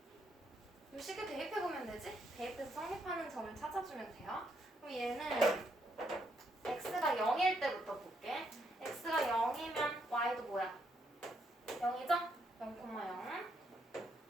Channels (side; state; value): both; normal; correlation 0.75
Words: 이 식에 대입해보면 되지? 대입해서 성립하는 점을 찾아주면 돼요. 그럼 얘는 x가 0일 때부터 볼게. x가 0이면 y도 뭐야? 0이죠? 0,0.